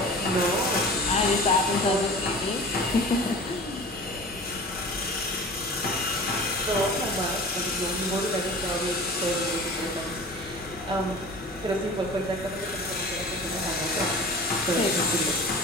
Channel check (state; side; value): normal; both; correlation 0.38